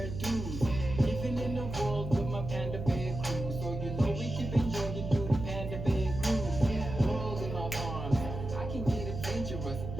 Dude. Living in the world with my Panda Bear crew. So you know we keep enjoying through the Panda Bear groove. World in my arms, I can get adventurous.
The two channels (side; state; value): right; noise; hum, 6 dB below the sound